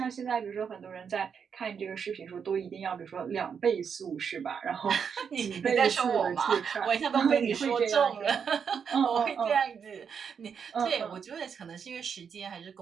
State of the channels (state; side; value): quieter; left; 6.8 dB